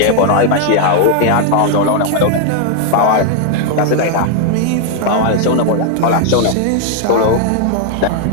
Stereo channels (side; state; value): both; different; correlation 0.00